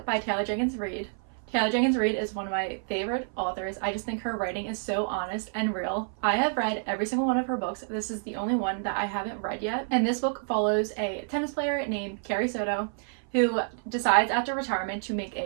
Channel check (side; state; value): left; silent; 57 dB below the other